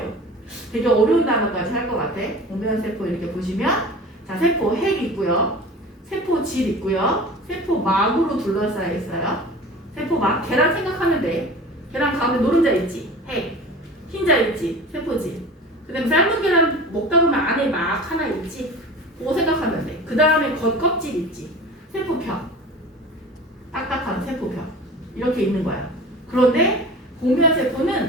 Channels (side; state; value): both; normal; correlation 0.37